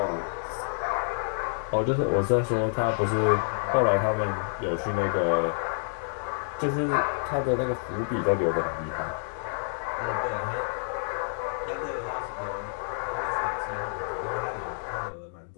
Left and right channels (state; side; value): silent; right; digital silence